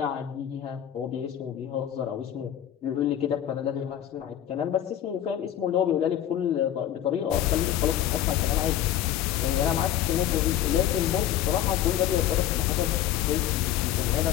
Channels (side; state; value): right; quieter; 11.3 dB